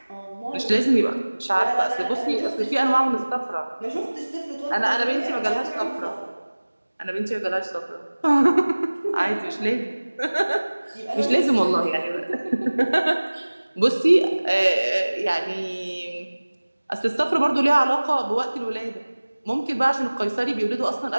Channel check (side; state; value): both; inverted; correlation -1.00